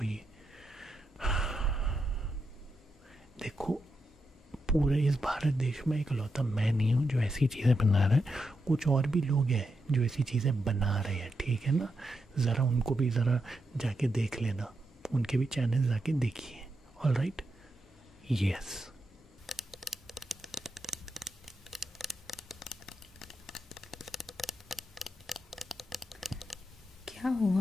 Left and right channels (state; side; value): normal; both; correlation 0.84